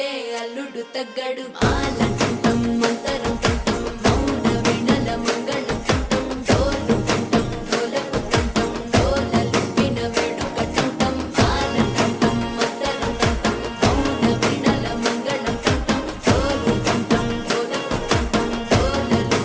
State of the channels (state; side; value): identical; both; correlation 1.00